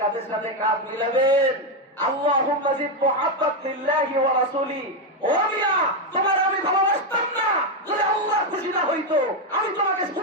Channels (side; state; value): both; normal; correlation 0.06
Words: কাঁধের সাথে কাঁধ মিলাবেন, আল্লাহুম্মা জিদ মুহাব্বাত লিল্লাহি ওয়া রাসূলি। ও মিয়া, তোমার আমি ভালোবাসতাম না যদি আল্লাহ খুশি না হইতো। আমি তোমাকে